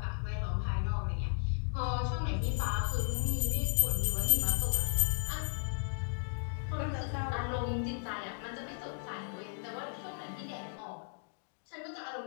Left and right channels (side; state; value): right; silent; digital silence